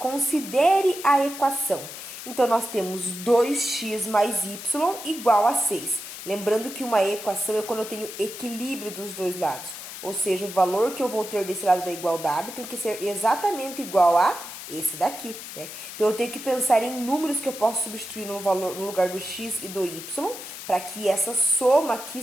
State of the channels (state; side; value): noise; left; hiss, 11 dB below the sound